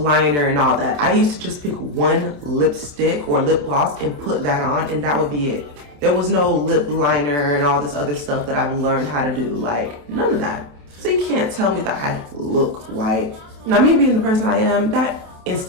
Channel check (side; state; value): left; late; 27 ms